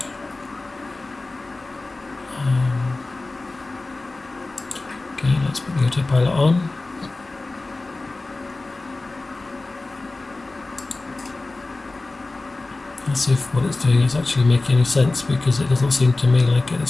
Okay, let's put the autopilot on. Let's see if what it's doing is actually making any sense, because it doesn't seem to me like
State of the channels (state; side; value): quieter; right; 3.2 dB